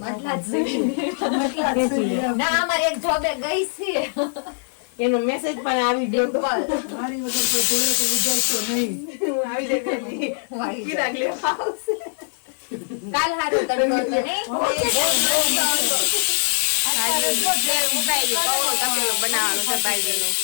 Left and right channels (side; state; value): right; silent; digital silence